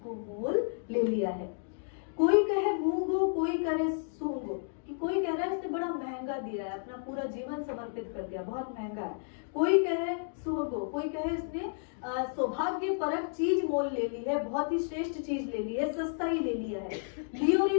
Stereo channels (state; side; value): silent; right; digital silence